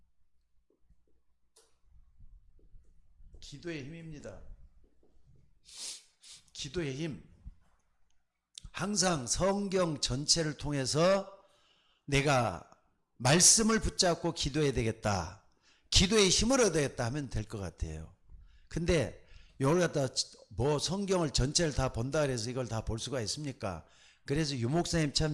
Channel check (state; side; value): identical; both; correlation 1.00